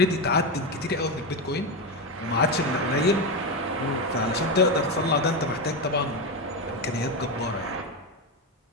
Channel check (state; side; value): normal; both; correlation 0.12